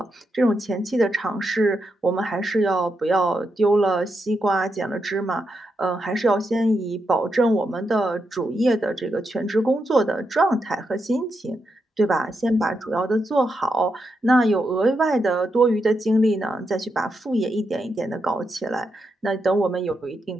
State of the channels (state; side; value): normal; both; correlation 0.84